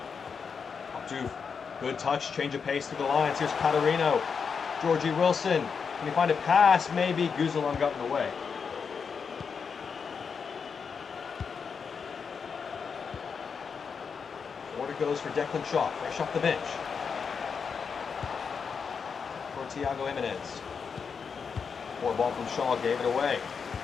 Pop Duke. Good touch. Change of pace through the lines. Here's Catarino. Georgie Wilson. Can he find a pass? Maybe. Guzalon got in the way. Forward it goes for Declan Shaw. Fresh off the bench. For Thiago Jimenez. Forward ball from Shaw, gave it away.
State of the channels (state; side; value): quieter; right; 6.0 dB